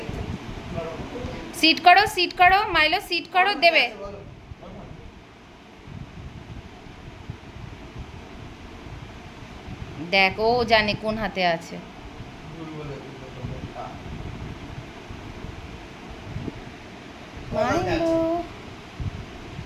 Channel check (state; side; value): identical; both; correlation 1.00